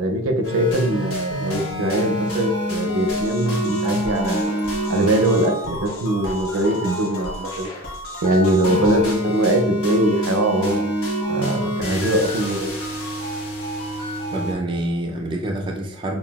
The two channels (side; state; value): both; normal; correlation 0.35